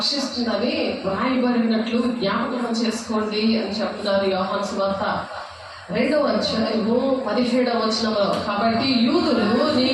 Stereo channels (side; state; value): both; identical; correlation 1.00